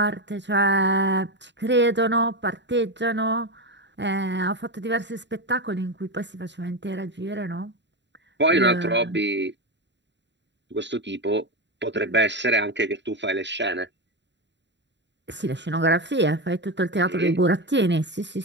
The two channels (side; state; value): left; late; 0.52 ms